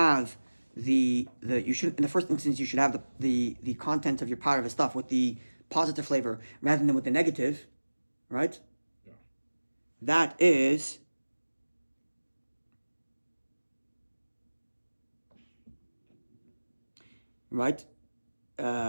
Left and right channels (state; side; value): inverted; both; correlation -1.00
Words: the first instance you should have the content of your part of the stuff with the positive flavor rather than with the negative, right? Yeah. That is right?